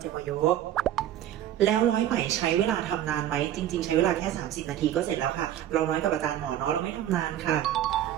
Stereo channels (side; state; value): left; quieter; 11.7 dB